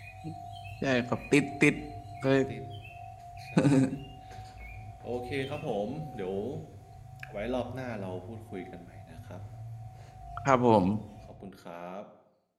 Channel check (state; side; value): identical; both; correlation 1.00